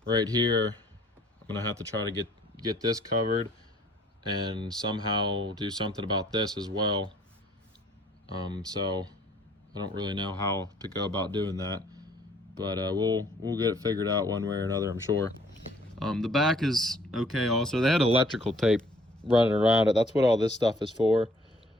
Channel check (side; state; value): both; normal; correlation 0.59